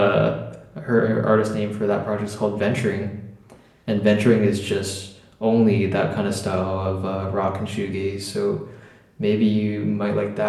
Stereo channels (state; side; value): identical; both; correlation 1.00